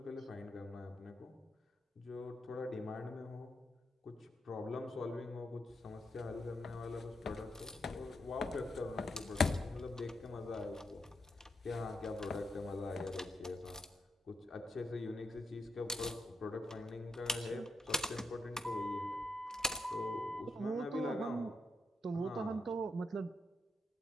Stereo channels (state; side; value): normal; both; correlation 0.81